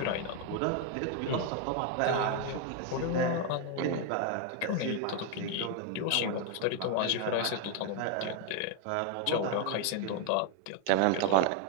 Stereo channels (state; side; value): different; both; correlation 0.01